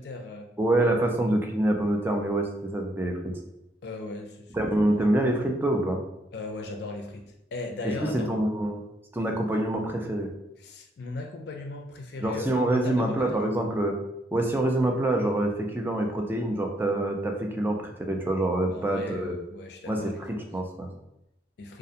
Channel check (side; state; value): both; normal; correlation 0.72